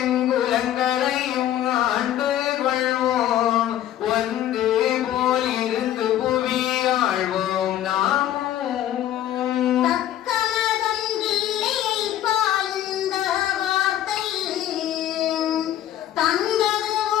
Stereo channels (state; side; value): quieter; right; 12.1 dB